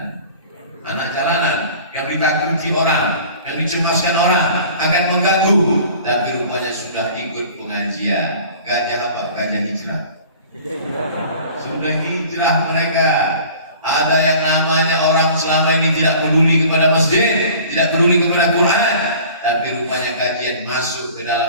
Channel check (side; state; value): both; inverted; correlation -0.45